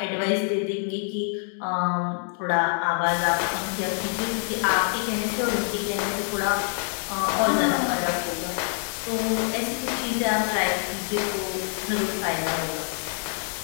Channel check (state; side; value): silent; right; 56 dB below the other